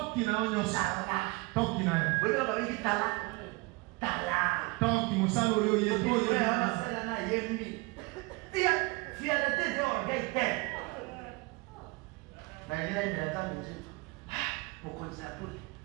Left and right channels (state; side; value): quieter; left; 25.1 dB